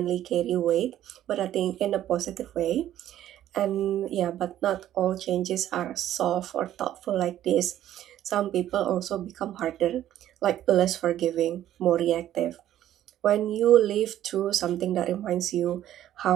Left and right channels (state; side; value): quieter; left; 12.2 dB